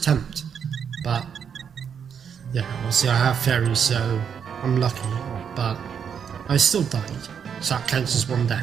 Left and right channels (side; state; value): left; quieter; 7.4 dB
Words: But yeah, obviously I have fairies, so I'm lucky, but I still died, so that counts as one